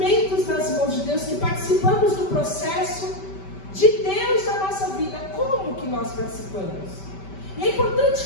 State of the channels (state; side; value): late; right; 5.2 ms